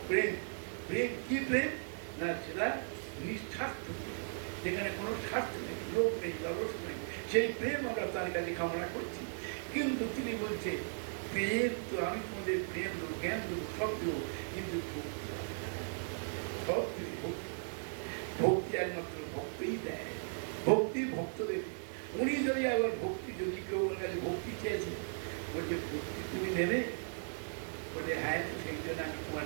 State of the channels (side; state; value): left; silent; digital silence